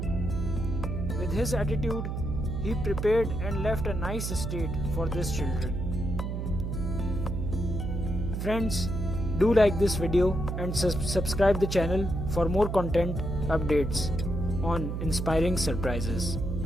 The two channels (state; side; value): noise; right; hum, 3 dB below the sound